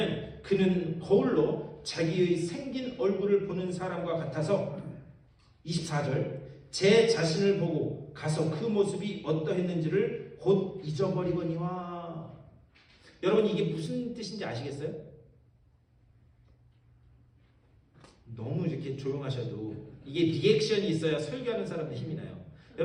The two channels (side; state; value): both; identical; correlation 1.00